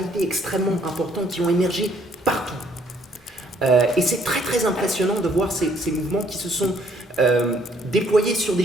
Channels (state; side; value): normal; both; correlation 0.64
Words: extrêmement importants qui ont émergé partout. Et c'est très très impressionnant de voir ces mouvements qui se sont déployés sur des